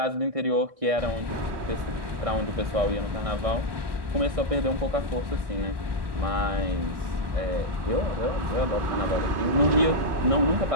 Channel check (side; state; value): left; late; 1.6 ms